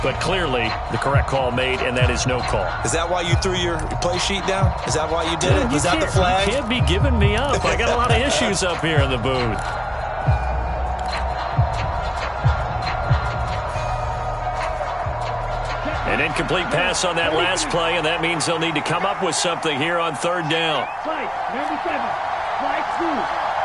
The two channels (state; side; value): identical; both; correlation 1.00